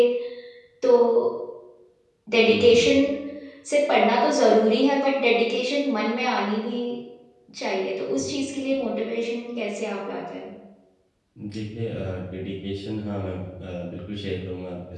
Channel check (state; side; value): identical; both; correlation 1.00